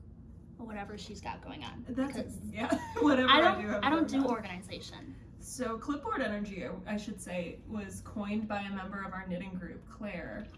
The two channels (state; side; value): identical; both; correlation 1.00